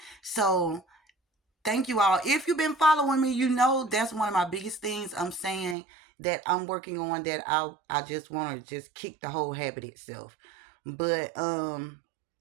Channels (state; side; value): drops out; left; at 5.8 s